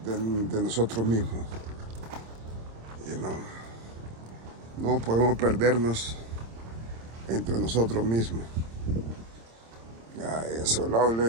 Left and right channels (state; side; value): late; left; 26 ms